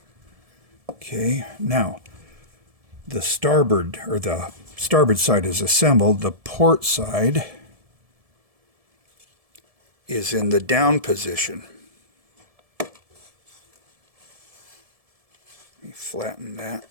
Okay, now the starboard side is assembled. The port side is in the down position. Let me flatten that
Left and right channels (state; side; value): late; left; 1.7 ms